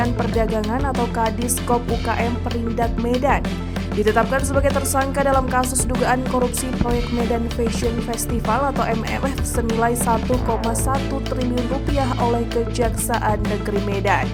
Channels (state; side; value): identical; both; correlation 1.00